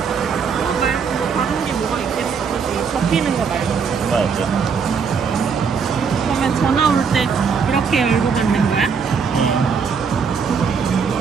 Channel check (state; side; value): quieter; left; 5.9 dB